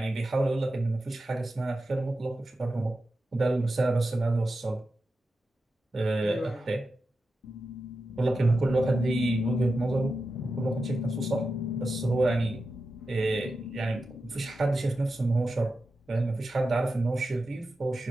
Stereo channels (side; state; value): both; normal; correlation 0.91